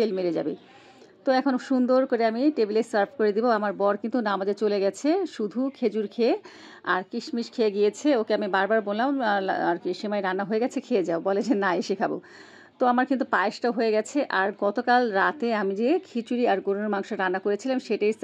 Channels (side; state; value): both; identical; correlation 1.00